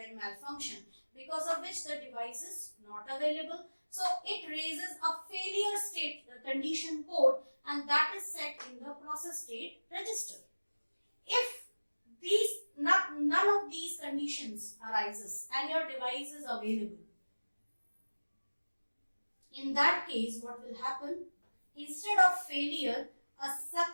malfunction because of which the device is not available. So it raises a failure state condition code, and that is set in the process state register. If none of these conditions arises and your device is available, in that case what will happen? Instead of failure, a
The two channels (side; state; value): both; inverted; correlation -1.00